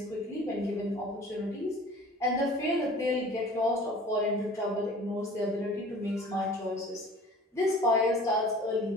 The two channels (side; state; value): both; normal; correlation 0.46